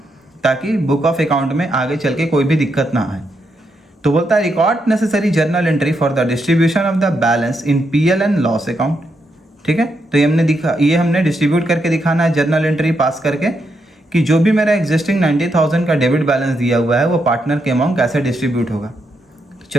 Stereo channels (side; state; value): both; normal; correlation 0.81